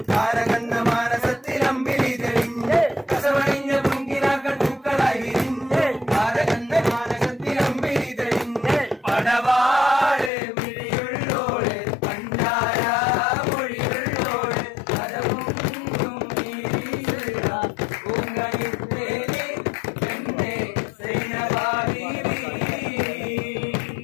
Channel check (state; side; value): drops out; right; at 10.3 s